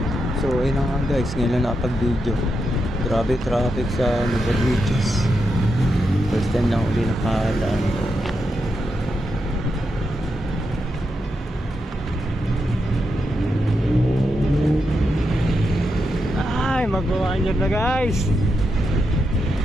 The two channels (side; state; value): both; normal; correlation 0.85